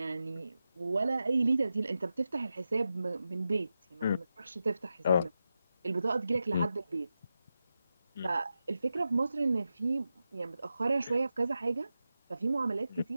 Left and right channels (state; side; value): inverted; both; correlation -0.90